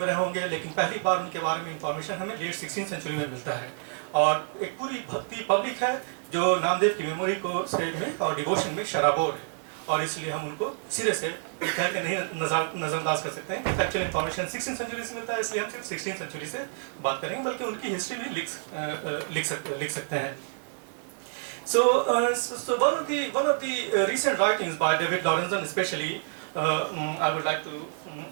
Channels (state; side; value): silent; left; digital silence